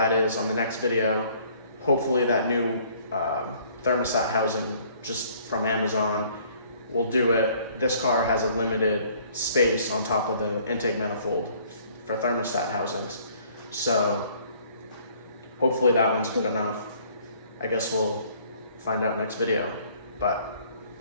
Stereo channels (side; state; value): both; inverted; correlation -0.58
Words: is on the next video. Hopefully that new thermostat housing just from Amazon will do it. This car has a limited space on top of the intake manifold for thermostat housings. So hopefully that one's good enough. I guess we'll find out next video, but